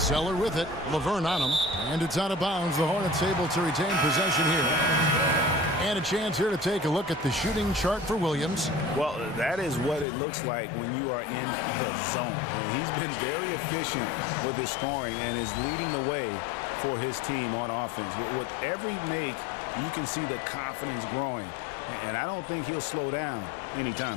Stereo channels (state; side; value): drops out; right; at 10.1 s